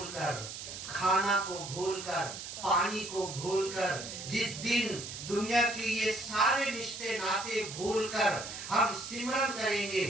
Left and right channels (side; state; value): right; noise; hiss, 9 dB below the sound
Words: खाना को भूलकर, पानी को भूलकर, जिस दिन दुनिया के ये सारे रिश्ते नाते भूलकर हम सिमरन करेंगे,